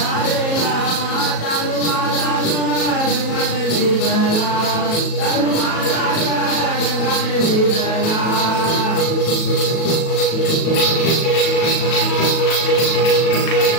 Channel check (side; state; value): right; late; 37 ms